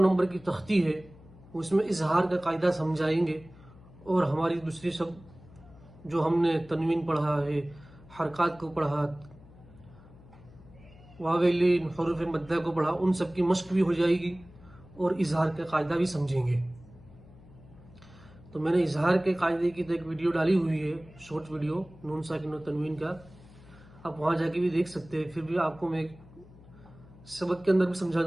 نمبر کی تختی ہے اس میں اظہار کا قاعدہ سمجھائیں گے، اور ہماری دوسری سب جو ہم نے تنوین پڑھا ہے، حرکات کو پڑھا، واویلین حروف مدہ کو پڑھا، ان سب کی مشق بھی ہو جائے گی اور اظہار کا قاعدہ بھی سمجھیں گے۔ تو میں نے اظہار کے قاعدے کی تو ایک ویڈیو ڈالی ہوئی ہے، شارٹ ویڈیو نون ساکن و تنوین کا، آپ وہاں جا کے بھی دیکھ سکتے ہیں۔ پھر بھی آپ کو میں سبق کے اندر بھی سمجھا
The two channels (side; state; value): left; noise; hum, 22 dB below the sound